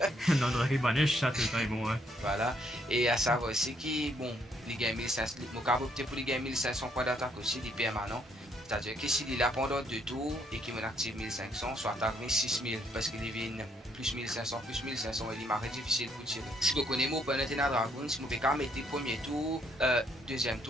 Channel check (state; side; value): normal; both; correlation 0.71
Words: Non, de banish, ça c'est très bon, ouais. Voilà. Et à savoir aussi que, bon, les games 1500, je peux opter pour les games 1500 points d'attaque aussi, des permanents. C'est-à-dire que s'il est là pendant 2 tours et qu'il m'active 1500, soit attaque 6000 parce qu'il vient plus 1500, il m'arrête difficile pour tirer. Si vous connaissez mon opponent dans Dragon, si vous pouvez mettre le premier tour, deuxième